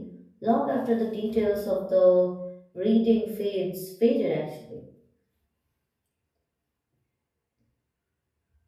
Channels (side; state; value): both; identical; correlation 1.00